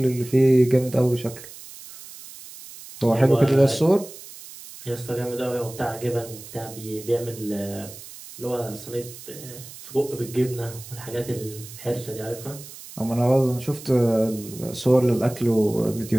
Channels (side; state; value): right; noise; hiss, 16 dB below the sound